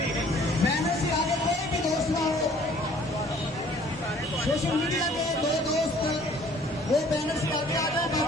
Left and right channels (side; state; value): both; normal; correlation 0.56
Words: بینر سے آگے کوئی بھی دوست نہ ہو. سوشل میڈیا کے دو دوست وہ بینر سے آگے آ جائیں،